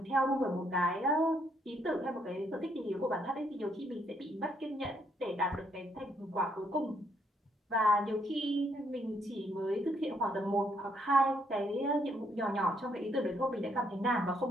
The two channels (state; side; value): normal; both; correlation 0.72